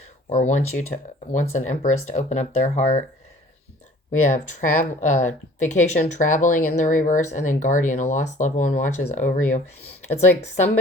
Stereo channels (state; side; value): normal; both; correlation 0.50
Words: or wants an Empress to open up their heart. We have vacation, traveling in the reverse, and then guardian, a lost loved one watches over you. It's like